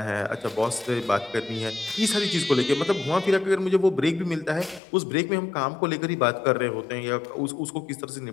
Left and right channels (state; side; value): drops out; right; at 4.8 s